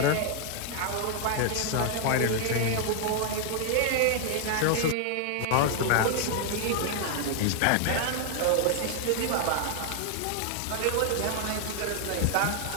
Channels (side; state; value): both; different; correlation 0.00